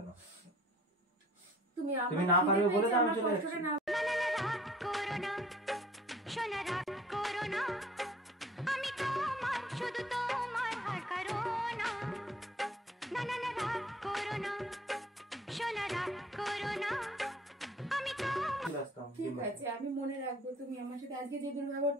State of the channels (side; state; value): both; normal; correlation 0.54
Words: তুমি তুমি না পারবে বলে তো আমি চলে কষ্টটা যাচ্ছি। না। রাগ করো না, সোনা রাগ করো না, আমি তোমার শুধু তোমার আর কারো না। না না না, রাগ করো না, সোনা রাগ করো না, আমি তোমার। চলে আসতাম ঠিক ডিম ভাজা। আছে, আমি মনে রাখবো। তুমি আমার সাথে আজকে যে